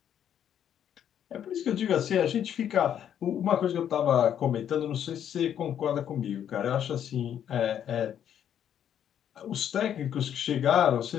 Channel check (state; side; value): quieter; right; 9.6 dB